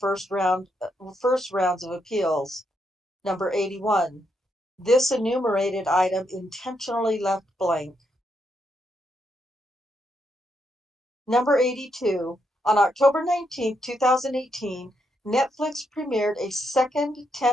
rounds of appeals. Number 81. This enumerated item intentionally left blank. Number 82. On October 19, 2018, Netflix premiered a second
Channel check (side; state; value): both; normal; correlation 0.79